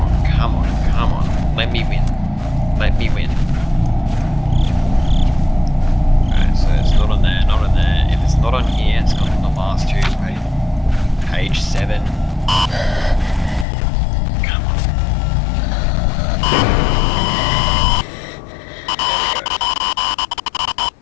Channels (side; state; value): right; drops out; at 13.7 s